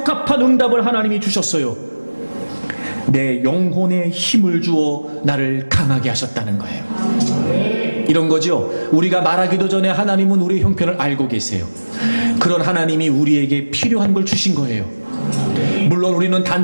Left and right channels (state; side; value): inverted; both; correlation -1.00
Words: 응답을 하나님이 주셨어요. 내 영혼에 힘을 주어 나를 강하게 하셨다는 거예요. 이런 거죠. 우리가 말하기도 전에 하나님은 우리의 형편을 알고 계세요. 그런 하나님이 우리에게 필요한 걸 주신 거예요. 물론 우리는